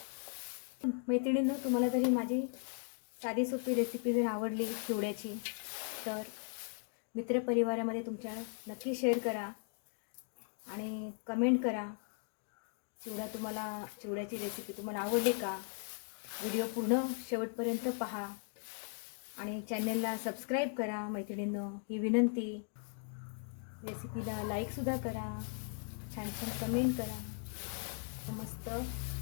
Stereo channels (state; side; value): silent; right; 53 dB below the other